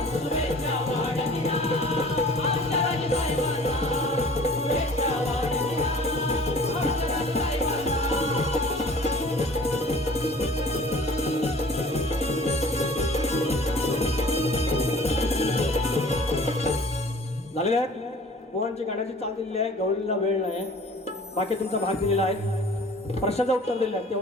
शुभेच्छा वाढदिना आमच्या राजसाहेबांना. शुभेच्छा वाढदिना आमच्या राजसाहेबांना. झालेले आहेत. पोहांची गाण्याची चाल दिलेली आहे. गवळीला वेळ नाही. बाकी तुमचा भाग दिलेला आहे. प्रश्नाचं उत्तर दिलेलं आहे.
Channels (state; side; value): normal; both; correlation 0.48